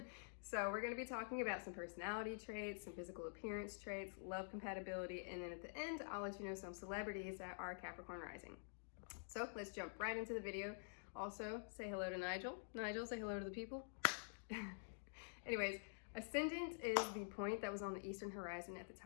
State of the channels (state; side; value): silent; right; digital silence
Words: So we're going to be talking about some personality traits, some physical appearance traits, love compatibility, and then at the end I'll let you know some celebrities that are Capricorn Rising. So let's jump right into the video. Also, say hello to Nigel. Nigel, say hello to the people. Anyways, Ascendant is the point that was on the eastern horizon at the